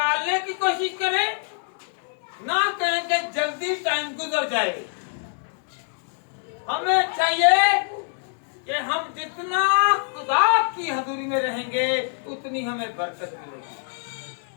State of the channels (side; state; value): right; silent; 62 dB below the other